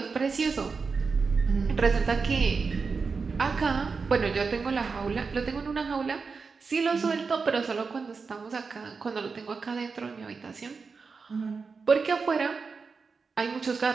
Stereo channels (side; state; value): left; quieter; 4.9 dB